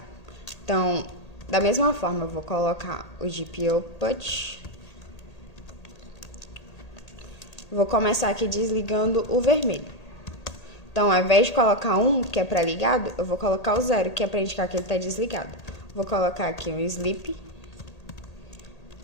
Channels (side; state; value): right; late; 1.8 ms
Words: Então, da mesma forma, eu vou colocar o GPIOPut. Vou começar aqui desligando o vermelho. Então, ao invés de colocar 1, que é para ligado, eu vou colocar o 0, que é para indicar que ele está desligado. Vou colocar aqui um sleep,